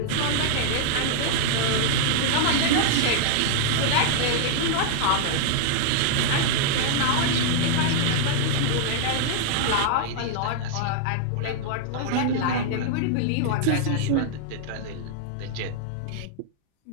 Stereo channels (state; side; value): different; both; correlation -0.01